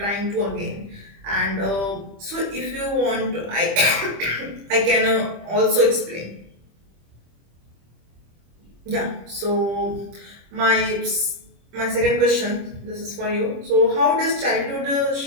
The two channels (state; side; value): late; left; 25 ms